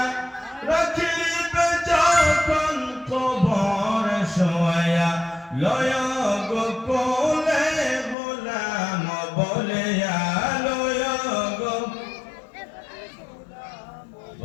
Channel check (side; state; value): right; drops out; at 8.2 s